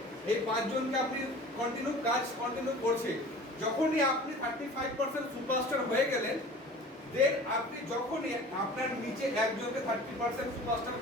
এই 5 জনকে আপনি কন্টিনিউ করছে। যখনই আপনি 35% সুপারস্টার হয়ে গেলেন, দেন আপনি যখনই আপনার নিচে একজনকে 30% সুপারস্টার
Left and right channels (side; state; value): both; normal; correlation 0.41